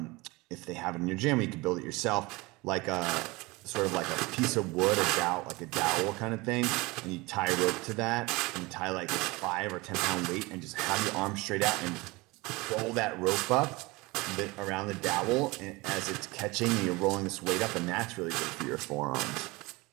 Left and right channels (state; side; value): quieter; left; 23.4 dB